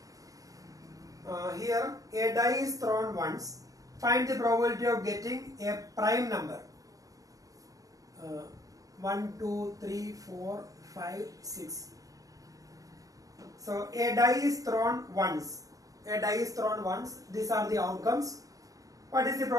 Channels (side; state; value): left; late; 0.17 ms